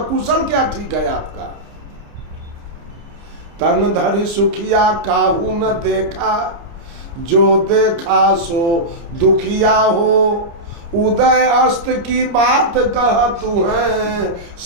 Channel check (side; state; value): left; late; 30 ms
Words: कुशल क्या ठीक है आपका? तन धरि सुखिया काहू न देखा, जो देखा सो दुखिया हो। उदय अस्त की बात कह तू है,